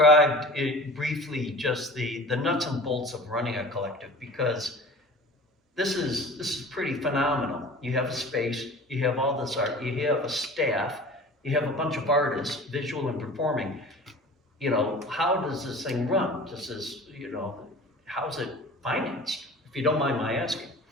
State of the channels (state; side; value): normal; both; correlation 0.40